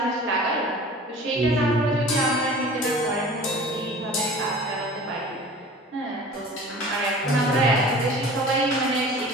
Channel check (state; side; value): normal; both; correlation 0.42